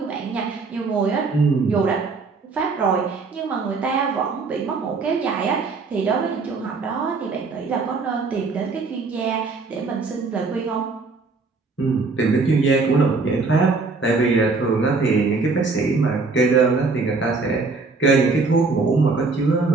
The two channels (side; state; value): left; quieter; 4.1 dB